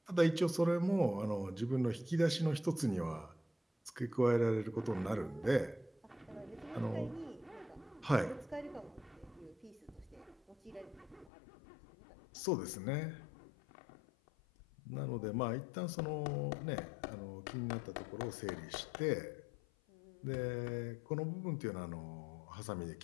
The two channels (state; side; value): drops out; right; at 11.3 s